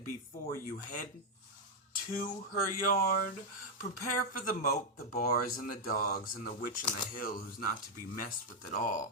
before you head to her yard, prepare for the moat, the bars, and the dogs, and the witch on the hill who's not to be messed with at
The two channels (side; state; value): both; normal; correlation 0.00